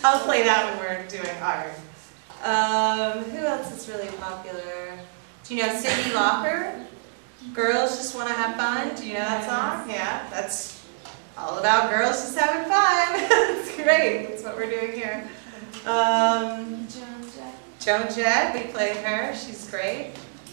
play that when we're doing art. Who else is really popular? Do you know Cyndi Lauper? Girls Just Want to Have Fun. Do you know that song? Yeah, that's all about girls just having fun. It's great. That's what we're doing here. Joan Jett, we played her. She's great.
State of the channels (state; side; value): silent; left; digital silence